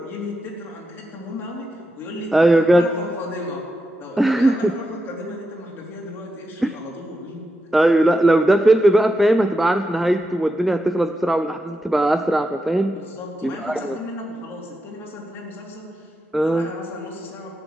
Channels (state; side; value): normal; both; correlation 0.87